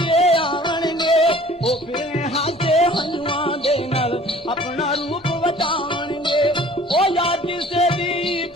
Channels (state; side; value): normal; both; correlation 0.50